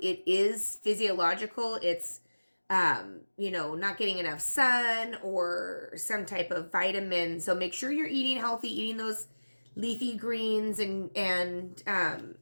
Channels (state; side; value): inverted; both; correlation -1.00